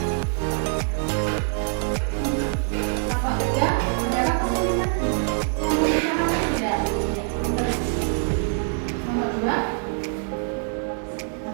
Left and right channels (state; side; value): silent; left; 56 dB below the other